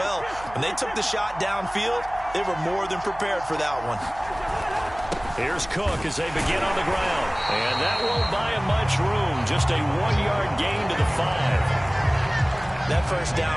When they took the shot downfield, they were more than prepared for that one. Here's Cook as they begin on the ground. And that won't buy him much room. Just a 1-yard gain to the 5. That first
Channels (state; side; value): noise; right; hum, 18 dB below the sound